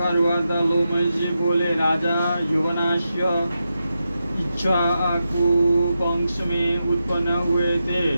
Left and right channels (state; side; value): inverted; both; correlation -0.88